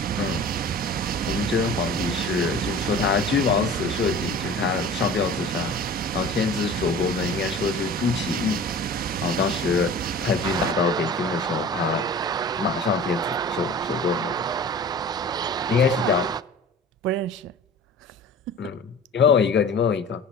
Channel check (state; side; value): normal; both; correlation 0.40